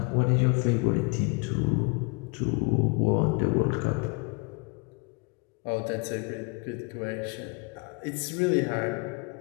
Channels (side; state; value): right; quieter; 32.2 dB